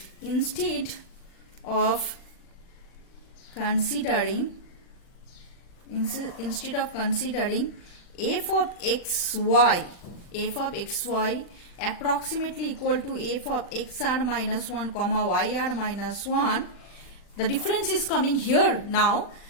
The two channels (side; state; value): right; late; 40 ms